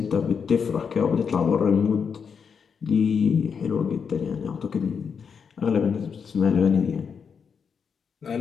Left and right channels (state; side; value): quieter; right; 6.4 dB